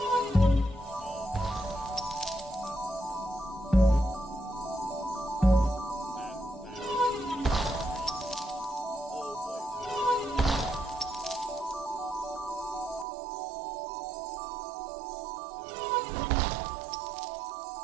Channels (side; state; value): left; drops out; at 13.1 s